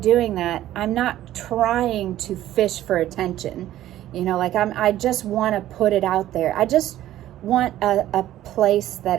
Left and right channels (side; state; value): left; quieter; 13.5 dB